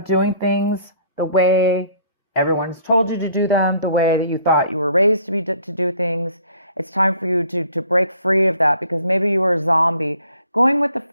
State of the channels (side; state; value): both; inverted; correlation -0.58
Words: doing things the way everyone's told you to do them, the way that you thought you were raised to do things. It's time for you to break free of that, because maybe you were a zombie. Going with the